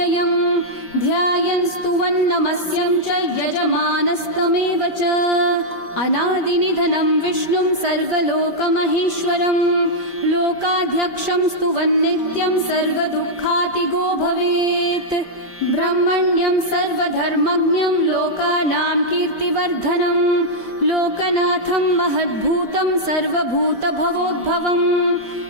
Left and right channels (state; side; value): late; right; 5.1 ms